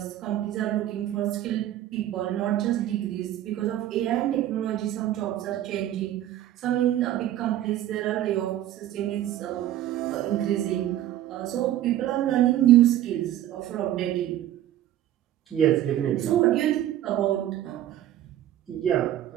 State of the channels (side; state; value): left; quieter; 12.7 dB